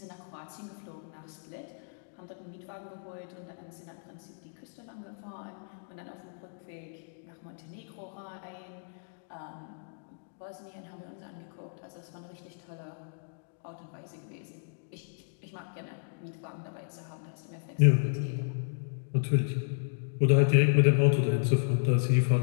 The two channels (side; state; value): right; silent; digital silence